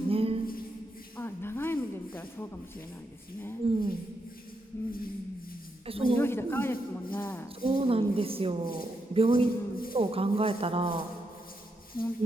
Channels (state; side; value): normal; both; correlation 0.82